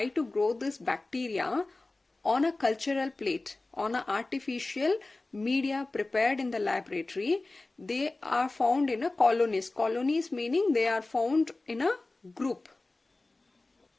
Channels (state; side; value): quieter; right; 3.1 dB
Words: to grow this bacteria on a cultural plate, on an artificial media prepared in the laboratory, they are found in a colonies. Colonies meaning they are found in a group.